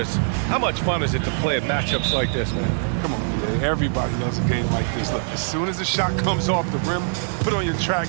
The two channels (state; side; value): silent; left; 64 dB below the other